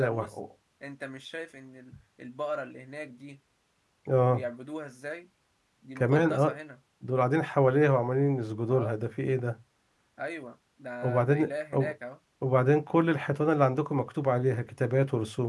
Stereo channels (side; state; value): both; identical; correlation 1.00